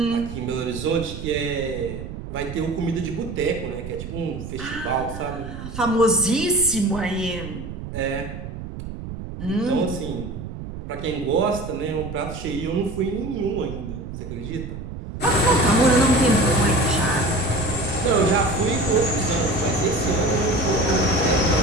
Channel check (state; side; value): noise; right; rumble, 9 dB below the sound